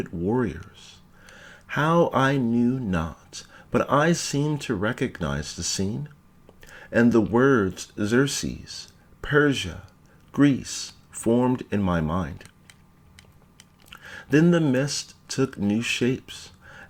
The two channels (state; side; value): identical; both; correlation 1.00